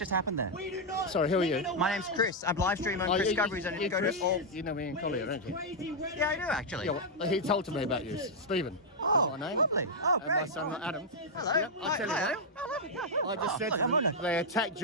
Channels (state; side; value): normal; both; correlation -0.03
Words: happened there? Sorry, who are you? My name's Chris. I'm live streaming on Chris Discoveries, and you go to all. You know me in Collier, don't you? Yeah, I do actually. Yeah, well, he told to me about you, Stephen. Oh, That's my name. lovely. Oh, And my great. son, Adam. Hello. Yep, I'll tell you Hi, what. Adam. Oh, lovely. I just said look, to I'm them, on it. they attacked